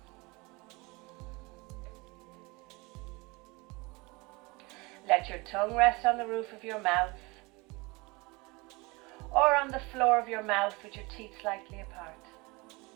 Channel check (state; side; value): quieter; left; 25.3 dB